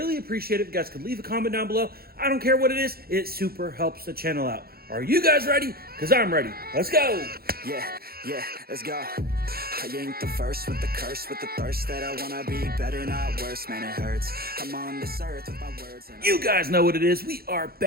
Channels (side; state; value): left; late; 0.44 ms